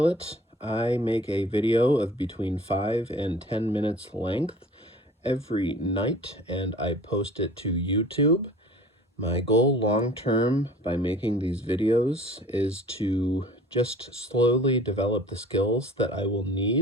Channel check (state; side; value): normal; both; correlation 0.46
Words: I make a video of between 5 and 10 minutes length every night, and I post it to YouTube. My goal long term by making these videos is to just slowly develop the skills that I will